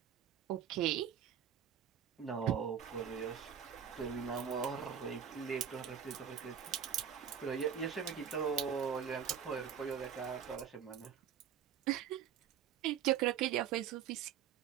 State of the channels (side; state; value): left; quieter; 8.5 dB